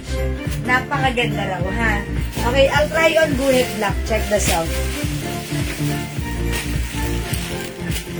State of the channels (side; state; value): both; identical; correlation 1.00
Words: Napakaganda raw, ha? Okay, I'll try on guhit black. Check the sound.